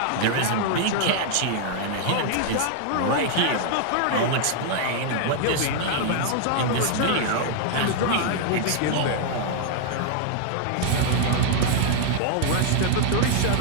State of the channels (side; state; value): both; different; correlation 0.00